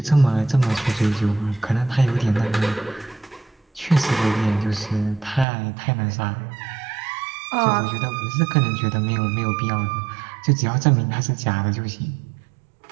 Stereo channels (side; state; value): left; drops out; at 5.5 s